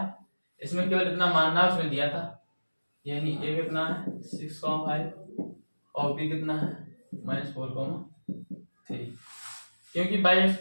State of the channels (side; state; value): both; inverted; correlation -1.00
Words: इसमें केवल इतना मानना उसमें दिया था, यानी ए कितना है 6,5 और बी कितना है -4,3। क्योंकि बाई एक्स